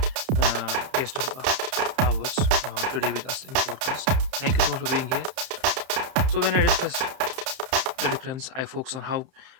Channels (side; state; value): left; late; 31 ms